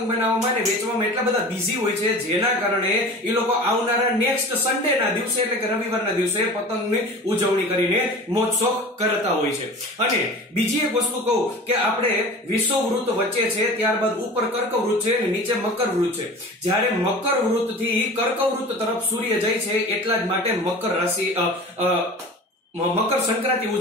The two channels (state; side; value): normal; both; correlation 0.38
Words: બનાવવામાં અને વેચવામાં એટલા બધા બિઝી હોય છે, જેના કારણે એ લોકો આવનારા નેક્સ્ટ સન્ડેના દિવસે એટલે કે રવિવારના દિવસે પતંગની ઉજવણી કરીને મોજ શોખ કરતા હોય છે. અને બીજી એક વસ્તુ કહું કે આપણે વિષુવવૃત્ત વચ્ચે છે, ત્યાર ઉપર કર્કવૃત છે અને નીચે મકરવૃત છે. જ્યારે મકરવૃત થી કર્કવૃત તરફ સૂર્ય જાય છે, એટલા જ માટે મકર રાશિ મકર સંક્રાંતિ